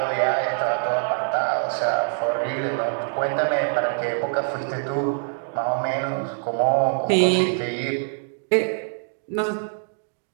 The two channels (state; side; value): silent; left; digital silence